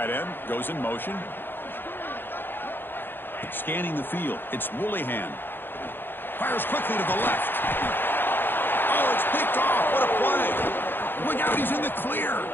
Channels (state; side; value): late; right; 0.099 ms